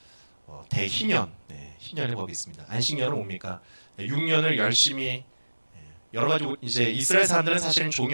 대희년, 희년의 법이 있습니다. 안식년은 뭡니까? 6년을 열심히 여러 가지, 이제 이스라엘 사람들은 사실은 종이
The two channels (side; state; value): both; inverted; correlation -1.00